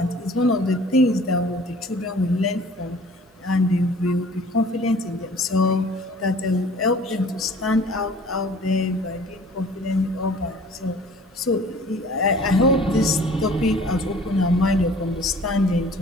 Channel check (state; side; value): normal; both; correlation 0.49